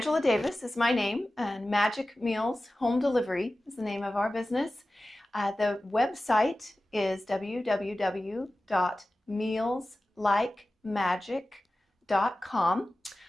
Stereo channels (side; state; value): both; normal; correlation 0.96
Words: Davis is my name, and Magic Meals Home Delivery is the name of our business. The website is www.mealslikemagic.com,